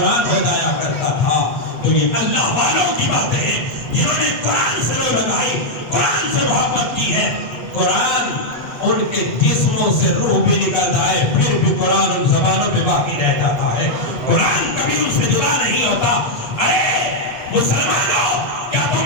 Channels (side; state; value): right; late; 8.6 ms